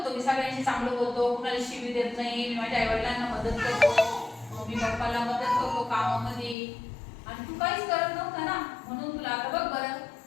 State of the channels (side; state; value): right; drops out; at 6.6 s